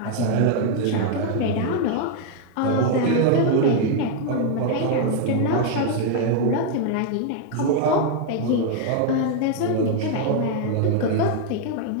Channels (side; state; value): both; different; correlation 0.00